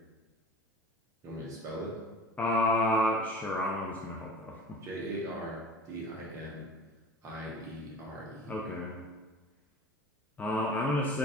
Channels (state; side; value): normal; both; correlation 0.40